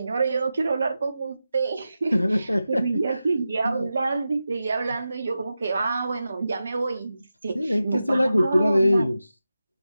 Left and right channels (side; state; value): both; inverted; correlation -0.92